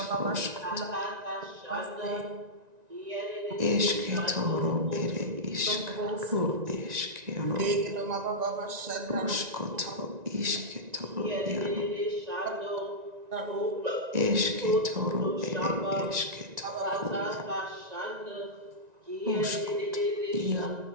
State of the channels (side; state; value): left; late; 1.9 ms